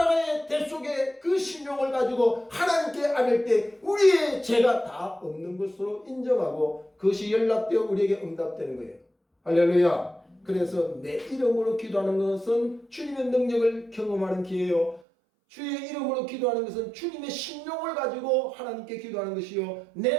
대속의 그 신용을 가지고 하나님께 아뢰 때 우리의 죄가 다 없는 것으로 인정하고 그것이 연락되어 우리에게 응답되는 거예요. 할렐루야. 그래서 내 이름으로 기도하는 것은 주님의 능력을 경험하는 기회요. 주의 이름으로 기도하는 것은 주님의 신용을 가지고 하나님께 기도하는 것이요.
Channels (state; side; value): drops out; left; at 15.0 s